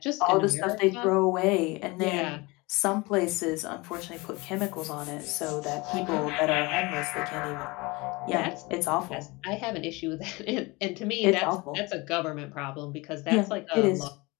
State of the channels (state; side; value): quieter; right; 24.5 dB